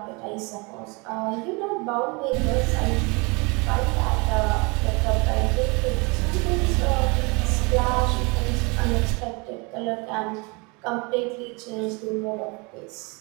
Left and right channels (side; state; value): left; quieter; 28.8 dB